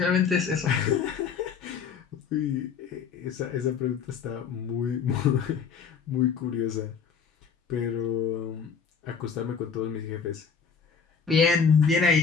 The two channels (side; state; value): right; quieter; 6.3 dB